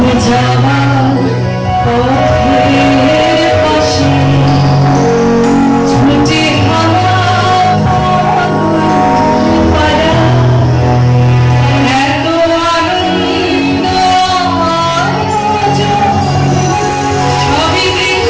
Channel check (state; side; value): identical; both; correlation 1.00